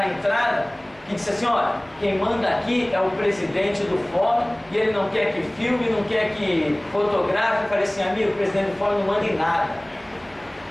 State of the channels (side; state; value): right; noise; hum, 30 dB below the sound